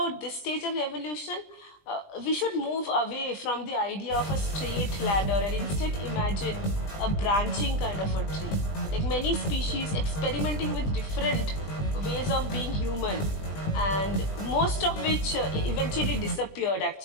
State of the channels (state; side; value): late; right; 20 ms